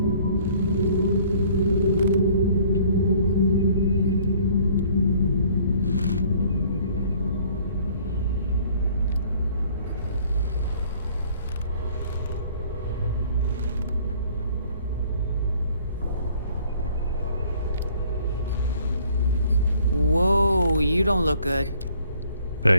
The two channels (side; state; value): both; inverted; correlation -0.57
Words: Whoa, you don't look good.